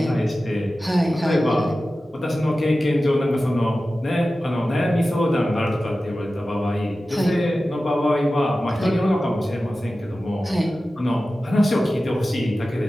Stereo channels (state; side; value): normal; both; correlation 0.95